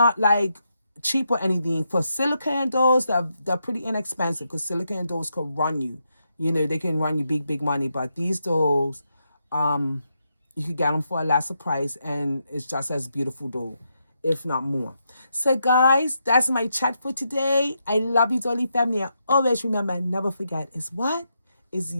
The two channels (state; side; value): inverted; both; correlation -0.82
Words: like cheap or anything, for silicone dolls, they're pretty inexpensive, because silicone dolls could run you. They can run you big, big money. But these dolls, you could get them for a lesser price, and it's just as beautiful doll, if not more. So guys, that's my chat for today. I love you, Dolly family. And always remember, never forget, is what? Is